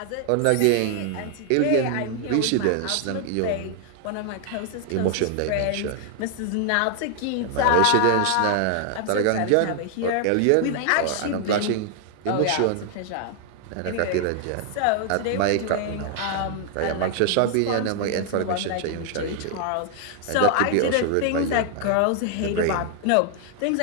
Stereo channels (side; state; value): both; different; correlation 0.00